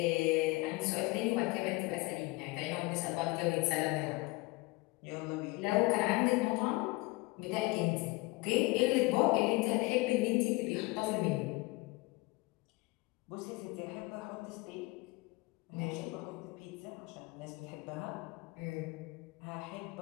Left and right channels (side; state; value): right; quieter; 23.7 dB